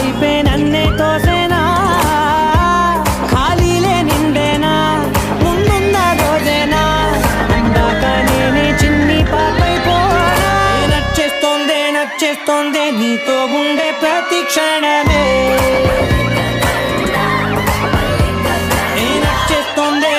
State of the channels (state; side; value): identical; both; correlation 1.00